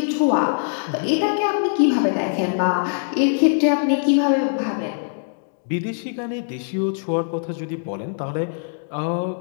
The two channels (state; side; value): silent; right; digital silence